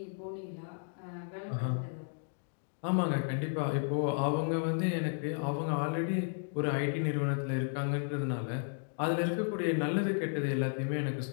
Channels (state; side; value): silent; right; digital silence